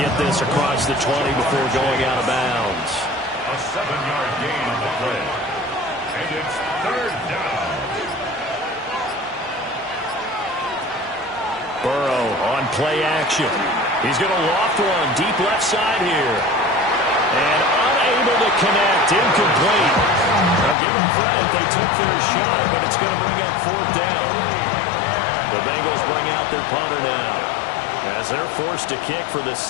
this across the 20 before going out of bounds. A 7-yard gain on the play. And it's 3rd down. Burrow on play action. He's going to loft one deep left side here. And unable to connect. Incomplete. Now give them credit. They took their shot, but it's going to bring up 4th down. The Bengals bring out their punter now, as they're forced to kick for the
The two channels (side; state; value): right; drops out; at 20.8 s